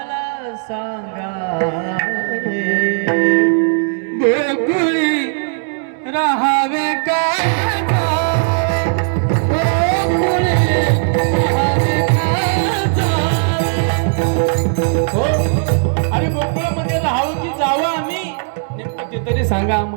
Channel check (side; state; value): left; silent; digital silence